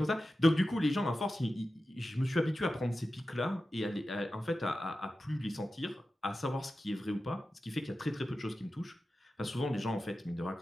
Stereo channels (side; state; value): both; normal; correlation 0.93